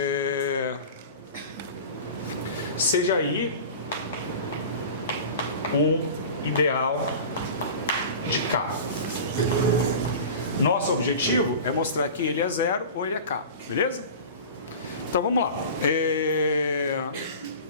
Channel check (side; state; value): both; inverted; correlation -0.35